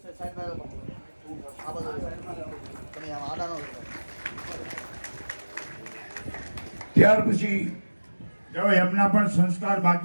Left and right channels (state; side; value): inverted; both; correlation -1.00